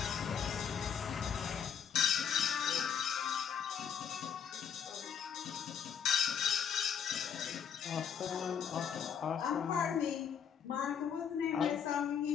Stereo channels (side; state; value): right; quieter; 7.7 dB